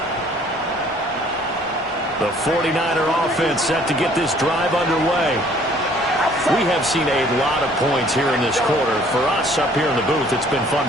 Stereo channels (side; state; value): both; normal; correlation 0.57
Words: The 49er offense set to get this drive underway. We have seen a lot of points here in this quarter. For us up here in the booth, it's been fun